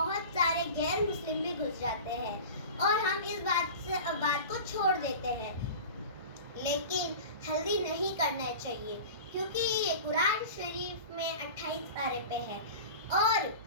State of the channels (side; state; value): both; inverted; correlation -0.35